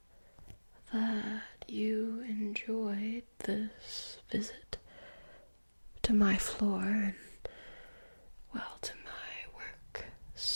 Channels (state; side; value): inverted; both; correlation -1.00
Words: that you enjoyed this visit to my floor and, well, to my work